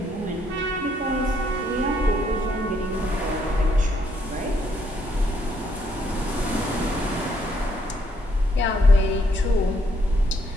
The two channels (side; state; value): both; normal; correlation 0.71